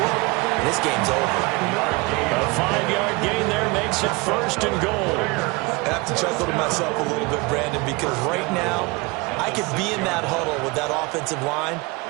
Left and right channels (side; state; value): left; quieter; 25.6 dB